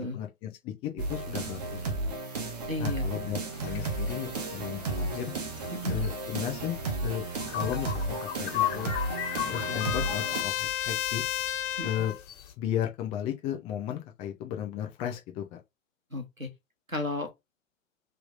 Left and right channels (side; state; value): right; quieter; 3.9 dB